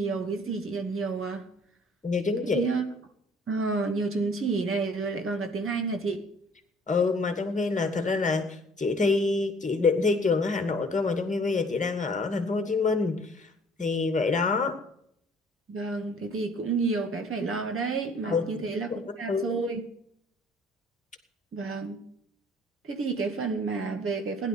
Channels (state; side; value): normal; both; correlation 0.55